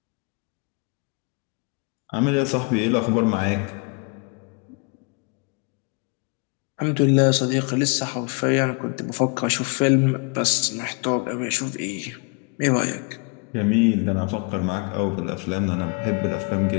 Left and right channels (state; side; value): quieter; right; 32.8 dB